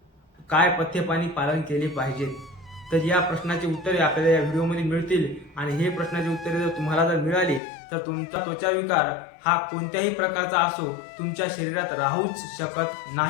काय पथ्यपाणी पालन केले पाहिजे। तर या प्रश्नाची उत्तरे आपल्याला या व्हिडिओमध्ये मिळतील आणि हे प्रश्नाची उत्तरे जर तुम्हाला जर मिळाली तर तुमचा त्वचा विकार हा कोणत्याही प्रकारचा असो तुमच्या शरीरात राहूच शकत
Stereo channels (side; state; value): right; drops out; at 7.6 s